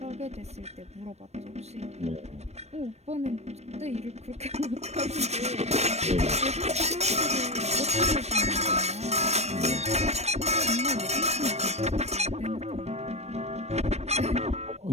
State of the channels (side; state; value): left; late; 0.31 ms